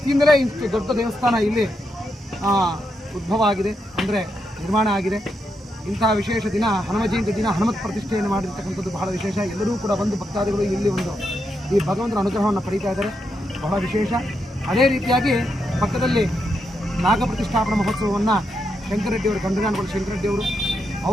ಇಷ್ಟು ದೊಡ್ಡ ದೇವಸ್ಥಾನ ಇಲ್ಲಿ ಉದ್ಭವ ಆಗಿದೆ, ಅಂದರೆ ನಿರ್ಮಾಣ ಆಗಿದೆ. ಇಂತಹ ವಿಶೇಷ ದಿನ ಹನುಮ ಜಯಂತಿ ದಿನ ಹನುಮತ್ ಪ್ರತಿಷ್ಠೆಯನ್ನು ಮಾಡಿರ್ತಕ್ಕಂಥದ್ದು ಬಹಳ ವಿಶೇಷ. ಎಲ್ಲರೂ ಕೂಡ ಬಂದು ಭಕ್ತಾದಿಗಳು ಇಲ್ಲಿ ಒಂದು ಈ ಭಗವಂತನ ಅನುಗ್ರಹವನ್ನು ಪಡೀತಾ ಇದ್ದಾರೆ, ಬಹಳ ವಿಶೇಷ. ಅದೇ ರೀತಿಯಾಗಿ ಪಕ್ಕದಲ್ಲಿ ನಾಗ ಪ್ರತಿಷ್ಠಾಪನಾ ಮಹೋತ್ಸವವನ್ನು ಶಂಕರರೆಡ್ಡಿಯವರು, ಗಂಡಗಾನಗಳು ಶಂಕರರೆಡ್ಡಿಯವರು,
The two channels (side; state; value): both; normal; correlation 0.82